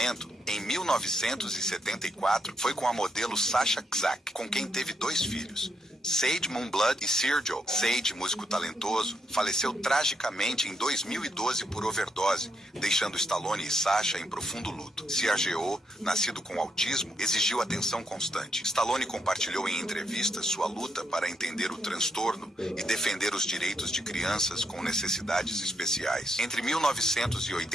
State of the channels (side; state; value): both; normal; correlation 0.78